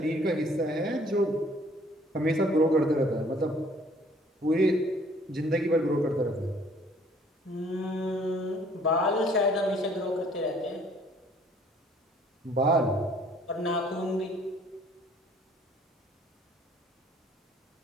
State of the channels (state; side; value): normal; both; correlation 0.58